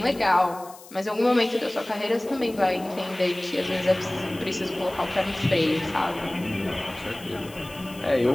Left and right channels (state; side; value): noise; left; hiss, 20 dB below the sound